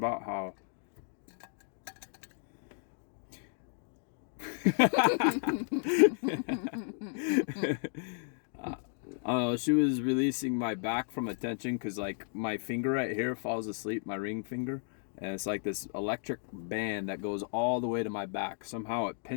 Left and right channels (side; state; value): right; silent; 55 dB below the other